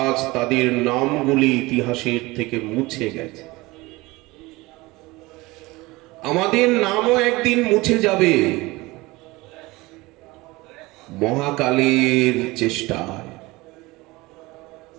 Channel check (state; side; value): quieter; left; 21.6 dB